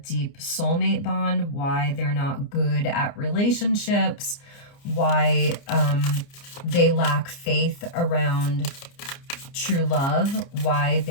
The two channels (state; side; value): late; right; 29 ms